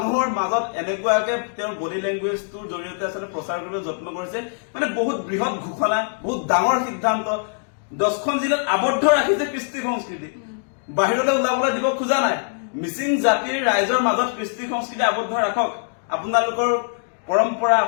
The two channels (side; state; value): right; silent; digital silence